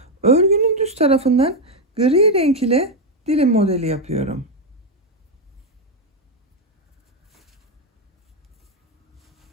örgünün düz tarafından gri renk ile dilim modeli yapıyorum.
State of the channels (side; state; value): both; normal; correlation 0.04